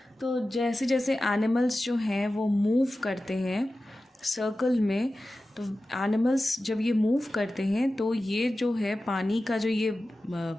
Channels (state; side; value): normal; both; correlation 0.94